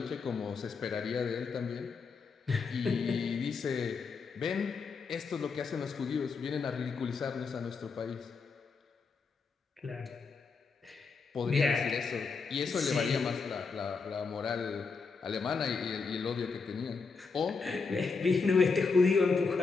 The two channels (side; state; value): right; quieter; 4.8 dB